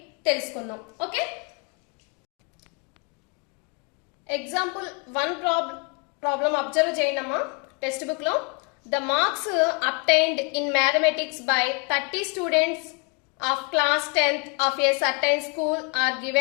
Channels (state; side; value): quieter; right; 31.9 dB